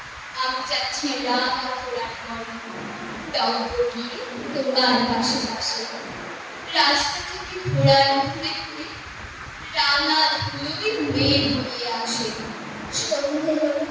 আমি যাচ্ছি রাঙা ঘোড়ার মনে, টঙ্ক গিয়ে তোমার পাশে পাশে। রাস্তা থেকে ঘোড়ার ঘুরে ঘুরে রাঙা ধুলোই মেঘ উড়িয়ে আসে। সন্ধে হলো,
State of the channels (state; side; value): identical; both; correlation 1.00